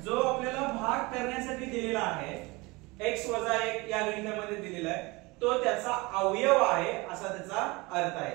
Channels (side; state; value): left; quieter; 24.2 dB